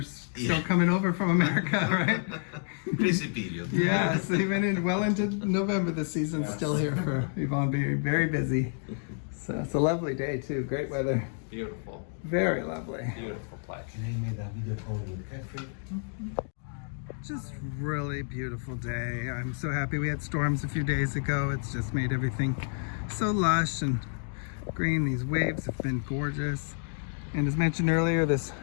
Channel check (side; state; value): right; silent; 58 dB below the other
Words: still coming over from America, right? Crazy period. Yes, even into November, the season's still here for Yvonne, being very busy. So it's a lovely day too. Great weather. beautiful, Very lovely. beautiful place. Just really beautiful day. I'm so happy we had storms a few days ago. It's just made everything so lush and green. These waves have been gorgeous. And as mentioned earlier, this